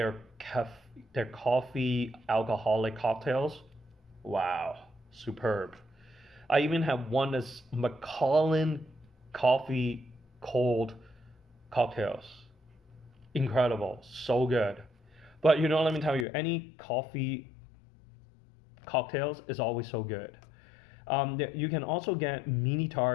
coffee alcoholic cocktails, wow, superb. I even have one that's Macallan coffee cold cocktails. Incredible, so good. But let me tell you, any coffee cocktails is always so good. You can also get mini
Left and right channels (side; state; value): right; drops out; at 16.2 s